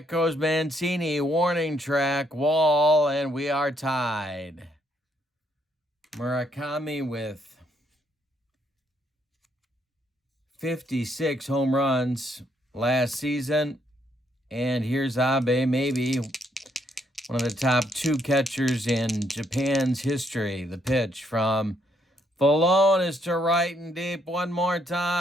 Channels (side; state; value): both; normal; correlation 0.72